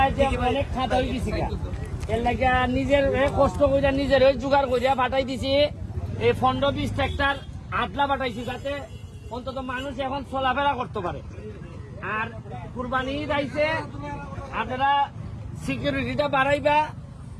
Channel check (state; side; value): identical; both; correlation 1.00